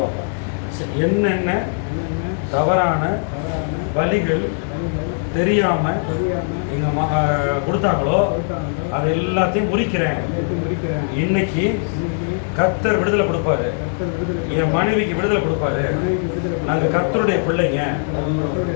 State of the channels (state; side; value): silent; right; 58 dB below the other